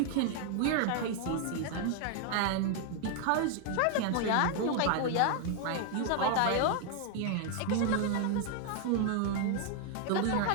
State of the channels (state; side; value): different; both; correlation 0.00